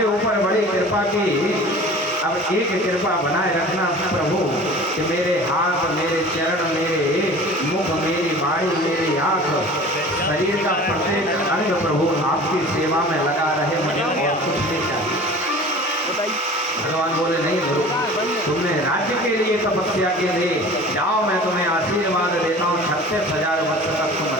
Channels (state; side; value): normal; both; correlation 0.41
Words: ऊपर बड़ी कृपा की। अब एक कृपा बनाए रखना प्रभु कि मेरे हाथ, मेरे चरण, मेरे मुख, मेरी वाणी, मेरी आंख, शरीर का प्रत्येक अंग प्रभु आपकी सेवा में लगा रहे। मुझे और कुछ नहीं चाहिए। भगवान बोले नहीं ध्रुव, तुमने राज्य के लिए तपस्या के लिए जाओ, मैं तुम्हें आशीर्वाद देता हूँ 36,000 वर्ष तक तुम